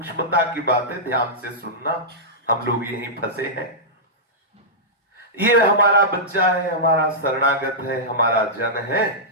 की बात है, ध्यान से सुनना। हम लोग यहीं फंसे हैं। ये हमारा बच्चा है, हमारा शरणागत है, हमारा जन है,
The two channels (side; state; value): both; normal; correlation -0.13